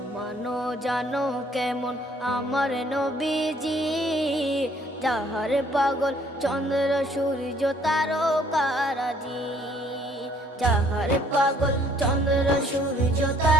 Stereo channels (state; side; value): normal; both; correlation 0.62